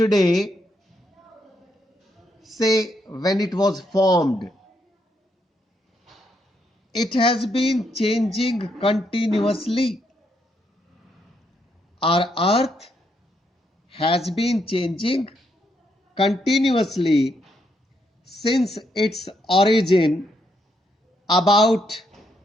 say when it was formed. It has been changing continuously. Our earth has been changing continuously since its origin about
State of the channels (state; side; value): normal; both; correlation 0.77